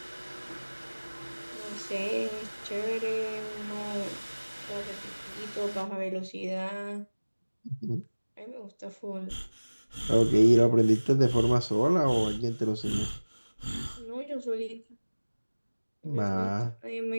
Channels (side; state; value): both; inverted; correlation -1.00